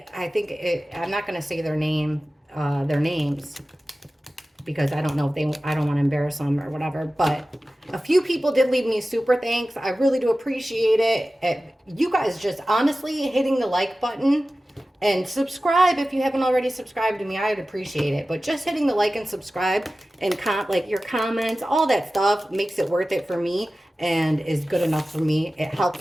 I think, I'm not going to say their names, because I don't know if I don't want to embarrass them or whatever. But a few people did leave me super thanks. I really do appreciate it. You guys just honestly hitting the like button and subscribe if you haven't already subscribed to me. I'd appreciate it. But just hitting the like and subscribe and like your comments, all that stuff makes it worth it for me. And is good enough for me. It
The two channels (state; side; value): normal; both; correlation 0.95